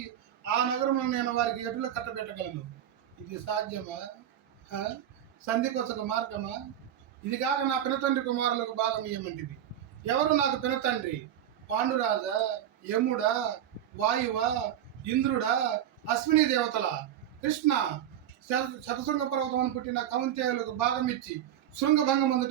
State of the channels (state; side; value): quieter; left; 10.7 dB